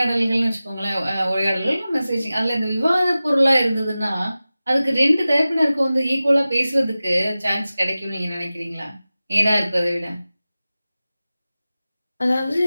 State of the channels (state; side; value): inverted; both; correlation -0.96